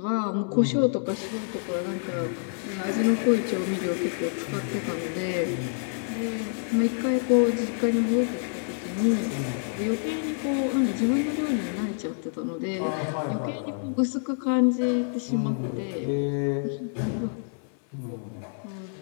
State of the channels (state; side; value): silent; right; 55 dB below the other